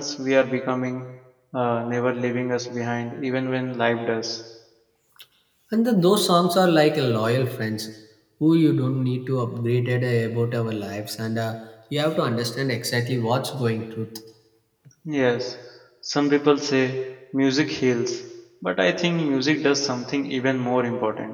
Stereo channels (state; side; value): identical; both; correlation 1.00